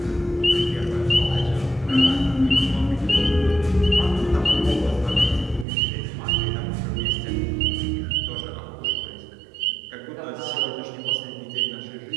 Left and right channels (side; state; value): left; drops out; at 5.7 s